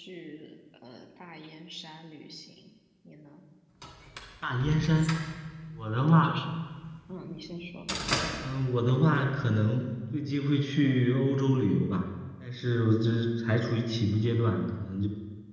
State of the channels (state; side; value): identical; both; correlation 1.00